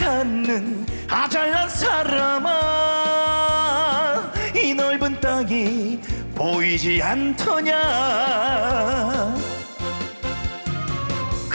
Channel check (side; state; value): both; inverted; correlation -1.00